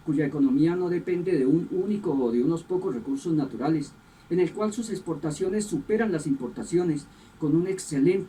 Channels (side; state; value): both; identical; correlation 1.00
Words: cuya economía no depende de un único o de unos pocos recursos naturales, en el cual sus exportaciones superan las importaciones, con un